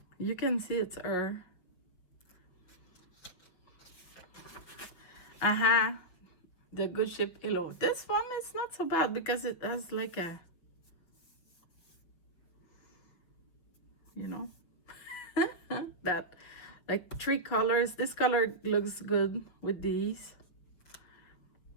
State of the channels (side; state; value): right; late; 6.1 ms